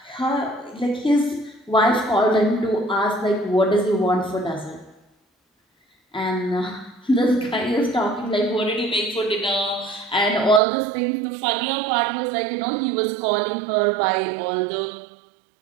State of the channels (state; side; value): drops out; left; at 10.6 s